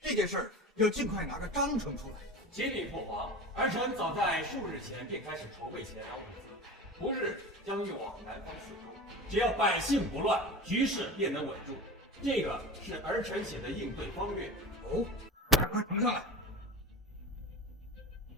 件事儿要尽快拿个章程出来。启禀父皇，儿臣早在数日前便开始筹备前粮物资，不日将运往南方四周。只要百姓不乱，局势便能稳住。这个是儿臣写的应对方略。哦，快呈上来。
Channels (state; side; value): normal; both; correlation 0.30